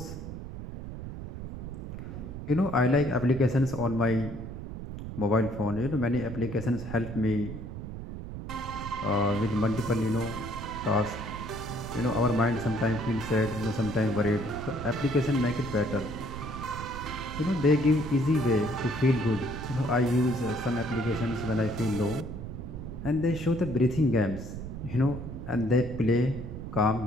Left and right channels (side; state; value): right; noise; rumble, 8 dB below the sound